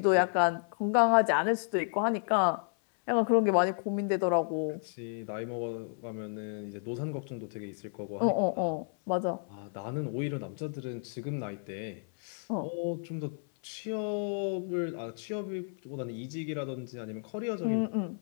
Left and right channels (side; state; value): right; silent; 57 dB below the other